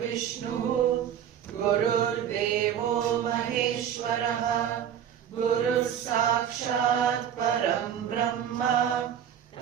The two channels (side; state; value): left; quieter; 9.3 dB